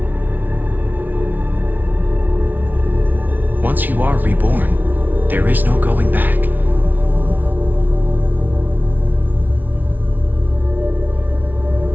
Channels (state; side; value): late; left; 0.082 ms